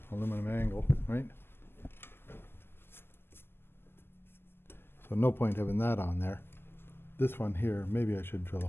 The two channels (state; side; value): late; right; 0.11 ms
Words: aluminum angle, right? So no point having that on there. This one here, maybe I should drill a